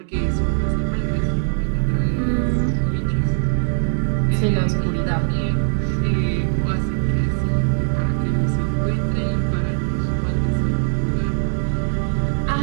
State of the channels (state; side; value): silent; left; digital silence